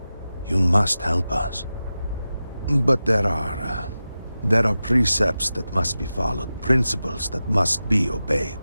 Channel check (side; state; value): both; inverted; correlation -0.93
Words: You must help us. But there are There are precepts that must be followed, principles that must be obeyed.